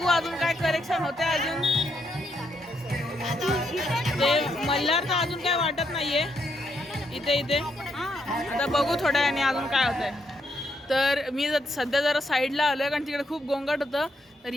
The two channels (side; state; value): both; normal; correlation 0.77